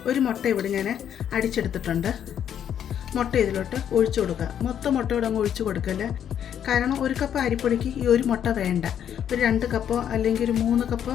1 മുട്ട ഇവിടെ ഞാൻ അടിച്ചെടുത്തിട്ടുണ്ട്. മുട്ട ഇതിലോട്ട് ഒഴിച്ചു കൊടുക്കുക. മൊത്തം മുട്ടയോടെ അങ്ങ് ഒഴിച്ചു കൊടുക്കല്ല. കാരണം 1 കപ്പ് അരിപ്പൊടിക്ക് ഈ 1 മുട്ട വേണ്ട. ഒരു 2 കപ്പോ അല്ലെങ്കിൽ ഒരു 3 കപ്പോ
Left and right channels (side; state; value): right; quieter; 9.3 dB